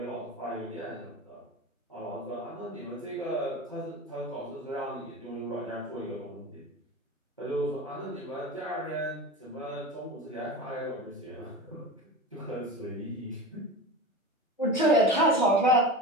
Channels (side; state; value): both; normal; correlation 0.29